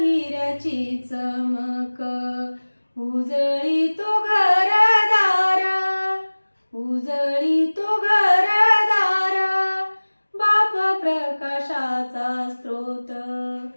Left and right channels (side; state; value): both; inverted; correlation -1.00